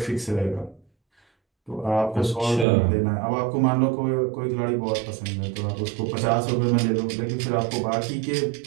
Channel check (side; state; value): left; drops out; at 2.7 s